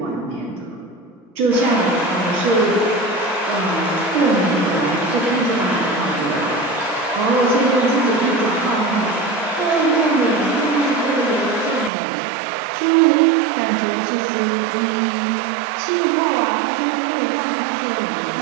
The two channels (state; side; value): drops out; left; at 11.9 s